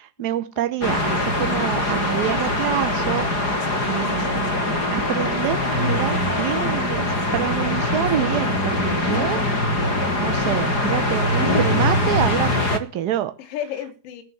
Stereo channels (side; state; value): right; late; 4.9 ms